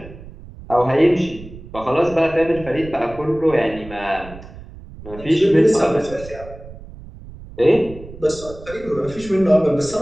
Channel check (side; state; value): right; noise; rumble, 16 dB below the sound